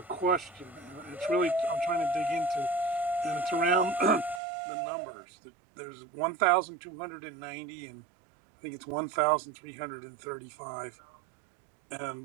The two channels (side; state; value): left; drops out; at 4.4 s